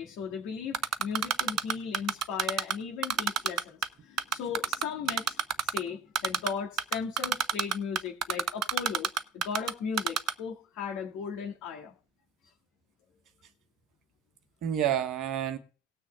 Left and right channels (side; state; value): left; quieter; 3.2 dB